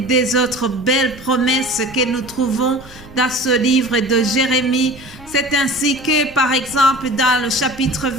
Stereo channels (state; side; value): noise; right; rumble, 21 dB below the sound